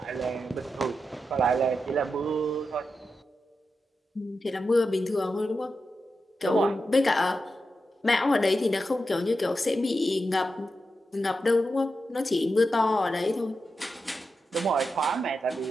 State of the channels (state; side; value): normal; both; correlation 0.89